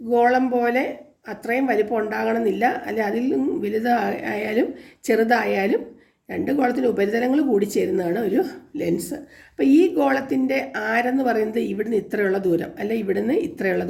പോലെ അത്രയും വലിപ്പം ഉണ്ടാകണമെന്നില്ല, അല്ലെ അതിൽ വലുതായാലും ചെറുതായാലും രണ്ട് ഗോളത്തിൻ്റെ ഉപരിതലങ്ങൾ കൂടി ചേരുന്നതാണ് ഒരു ലെൻസ്. അപ്പോൾ ഈ ഗോളത്തിൻ്റെ ആരെന്ന് പറയുന്നത് ഇവിടുന്ന് ഇത്രയുള്ള ദൂരം, അല്ലെ ഇവിടുന്ന് ഇത്രയുള്ള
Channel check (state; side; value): identical; both; correlation 1.00